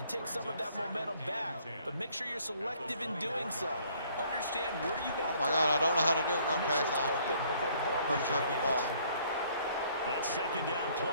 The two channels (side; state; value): both; inverted; correlation -0.62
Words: take some of that momentum back. But make sure you're selective in doing so. Understand where you want to Oh my God, I don't know how to do it. Run past open before the ball or leaves your flip the hands. ball. That second down